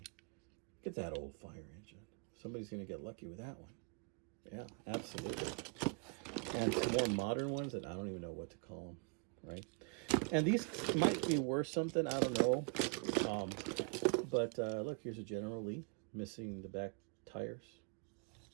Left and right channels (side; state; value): left; quieter; 37.7 dB